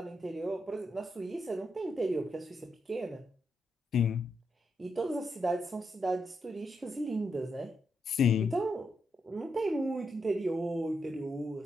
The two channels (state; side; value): normal; both; correlation 0.83